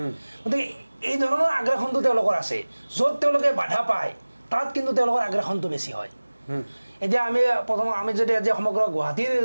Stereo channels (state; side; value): inverted; both; correlation -1.00